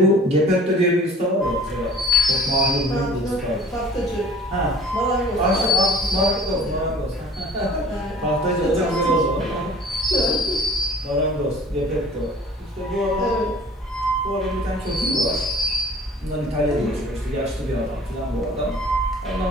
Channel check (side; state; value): both; normal; correlation 0.48